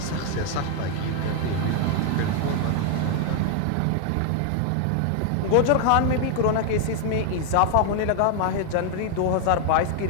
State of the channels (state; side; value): different; both; correlation 0.00